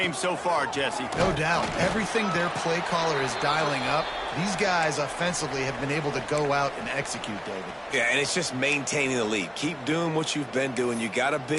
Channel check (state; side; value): identical; both; correlation 1.00